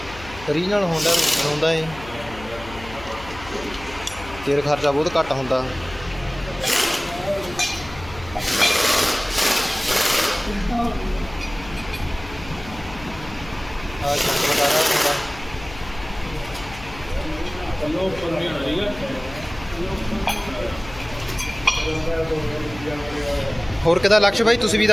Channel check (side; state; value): left; noise; hum, 15 dB below the sound